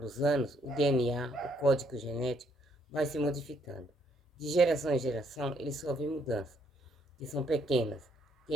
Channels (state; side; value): normal; both; correlation 0.70